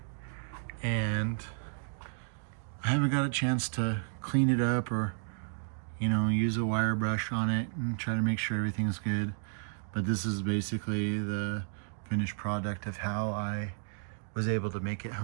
And I haven't got a chance to clean it up or, you know, use a wire brush on it and try to make sure everything's good. But this is basically the finished product of how I was able to make it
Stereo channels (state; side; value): silent; left; digital silence